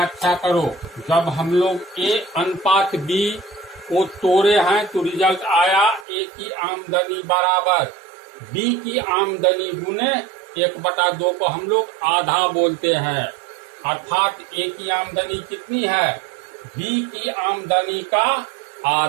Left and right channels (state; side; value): drops out; left; at 6.1 s